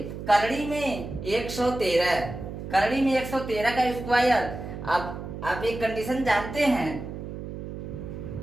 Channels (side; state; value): right; noise; hum, 9 dB below the sound